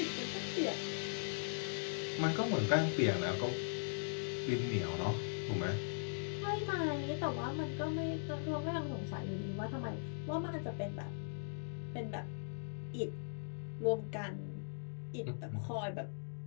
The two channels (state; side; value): silent; right; digital silence